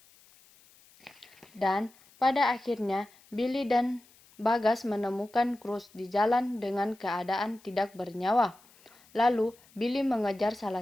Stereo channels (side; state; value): left; noise; hiss, 28 dB below the sound